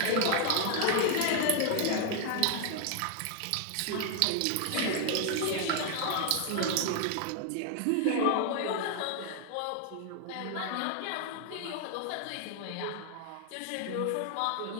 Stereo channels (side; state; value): both; different; correlation 0.00